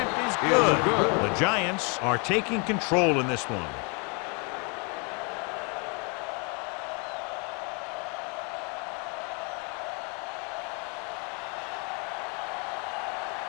is good. The Giants are taking control in this one.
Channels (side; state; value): right; quieter; 34.6 dB